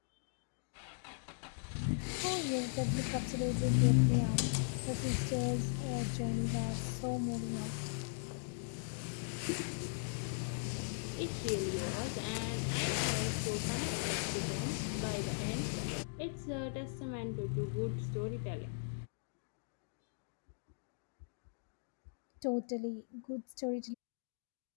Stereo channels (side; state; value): right; silent; digital silence